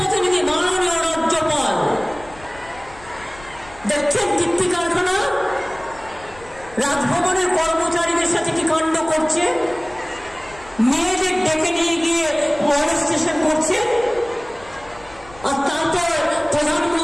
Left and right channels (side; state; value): left; noise; rumble, 22 dB below the sound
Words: মাননীয় রাজ্যপাল দেখছেন কীর্তি কারখানা, রাজভবনের কর্মচারীদের সাথে কি কাণ্ড করছে, মেয়েদের ডেকে নিয়ে গিয়ে মনস্টেশন করছে, আর তারপর